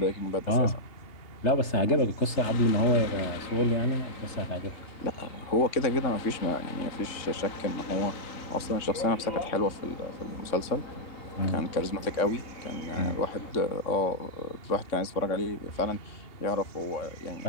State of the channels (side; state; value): right; late; 3.6 ms